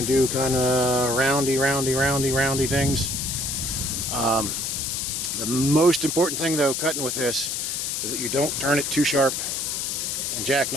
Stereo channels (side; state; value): left; noise; hiss, 2 dB below the sound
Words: do kind of roundy things. The most important thing though, cutting with this, is that you don't turn it too sharp and